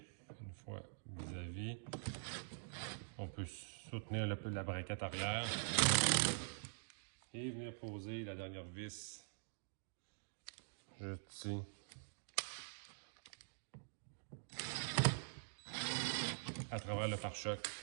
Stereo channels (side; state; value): left; silent; digital silence